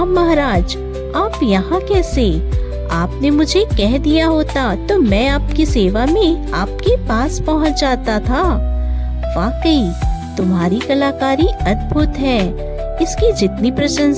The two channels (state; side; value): identical; both; correlation 1.00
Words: महाराज, आप यहाँ कैसे? आपने मुझे कह दिया होता तो मैं आपकी सेवा में आपके पास पहुँच जाता था। वाकई तुम्हारी कलाकारी अद्भुत है। इसकी जितनी